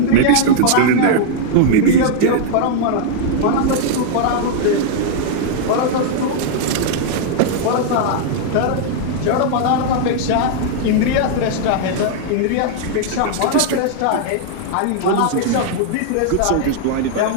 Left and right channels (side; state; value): both; different; correlation -0.01